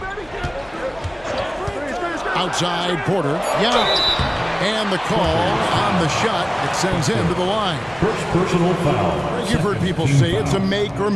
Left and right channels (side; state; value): left; noise; hum, 25 dB below the sound